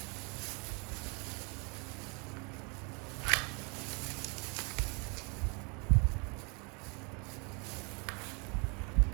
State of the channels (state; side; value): quieter; left; 32.7 dB